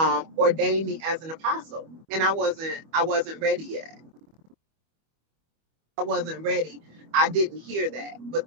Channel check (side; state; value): left; late; 25 ms